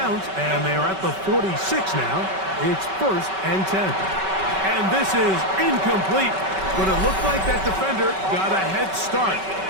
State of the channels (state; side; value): late; left; 5.2 ms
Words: and they're at the 46 now. It's 1st and 10. And this is incomplete, but it looked like that defender got a head start.